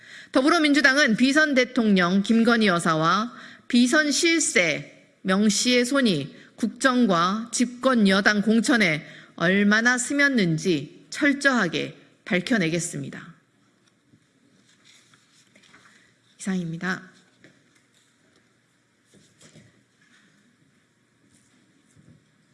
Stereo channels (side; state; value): both; identical; correlation 1.00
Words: 더불어민주당은 비선 대통령 김건희 여사와 비선 실세 명 씨의 손이 국정과 집권 여당 공천에 얼마나 스쳤는지 철저하게 밝혀내겠습니다. 이상입니다.